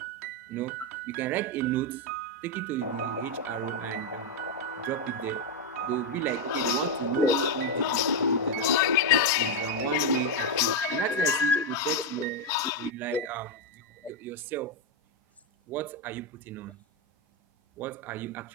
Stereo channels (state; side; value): normal; both; correlation 0.03